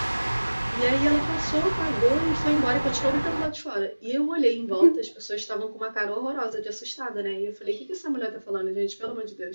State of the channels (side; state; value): both; inverted; correlation -1.00